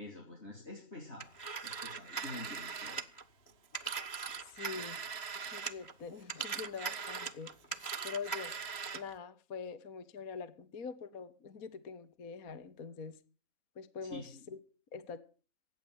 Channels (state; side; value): late; right; 3.1 ms